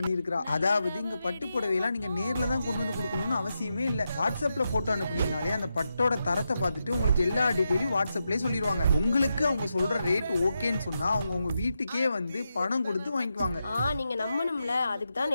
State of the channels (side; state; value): both; inverted; correlation -0.87